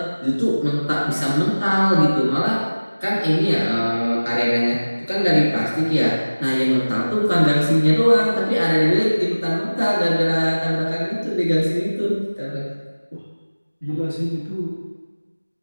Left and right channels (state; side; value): inverted; both; correlation -1.00